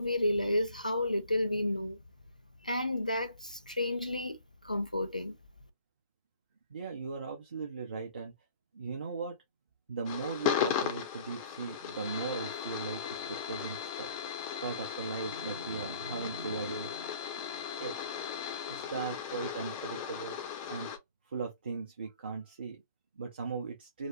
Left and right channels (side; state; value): both; inverted; correlation -0.56